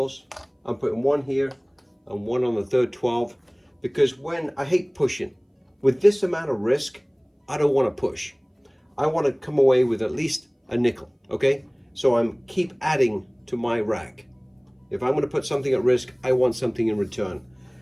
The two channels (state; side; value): identical; both; correlation 1.00